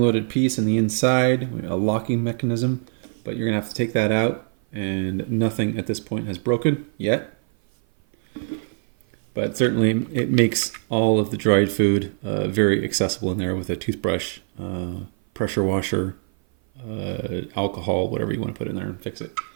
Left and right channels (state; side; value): silent; left; 56 dB below the other